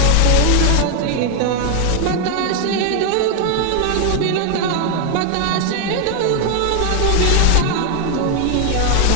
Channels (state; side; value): different; both; correlation 0.00